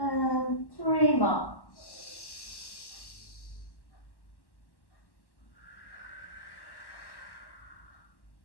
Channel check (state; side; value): late; right; 1.1 ms